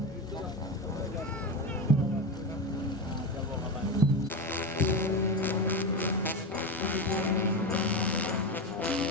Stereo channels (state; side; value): normal; both; correlation 0.18